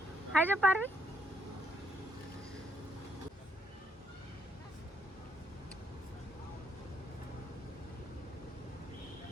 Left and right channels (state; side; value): normal; both; correlation 0.73